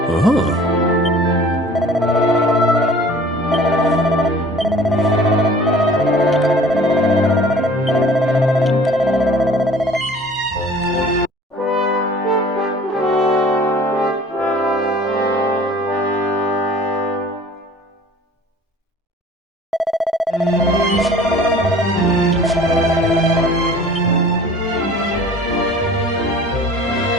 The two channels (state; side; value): normal; both; correlation 0.47